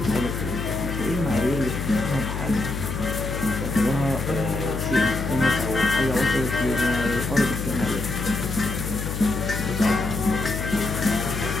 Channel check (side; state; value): left; noise; hum, 4 dB below the sound